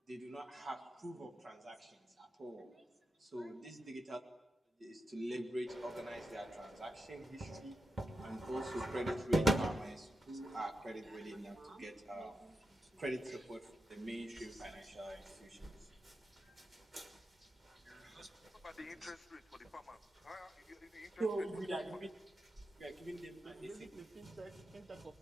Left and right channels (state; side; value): normal; both; correlation 0.87